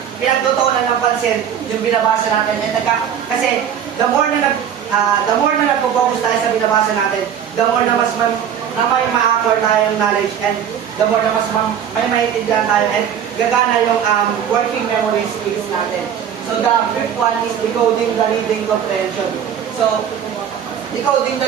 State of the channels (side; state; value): left; quieter; 8.7 dB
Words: pinagtutuunan ng pansin yung binabasa natin. And kasi the more na nagpo-focus tayo sa binabasa natin, the more na mas na may ma-acquire tayo ng knowledge, and the more na mas may maintindihan tayo, and gagana yung working memory skills natin. So the fifth one is decoding the reading comprehension. So decoding the